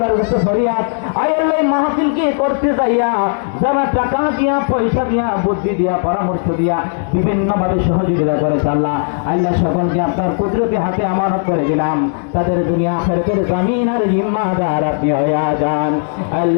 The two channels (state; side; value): silent; right; 69 dB below the other